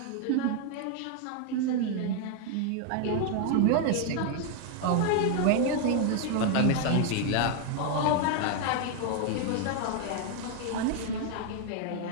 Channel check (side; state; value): both; different; correlation 0.00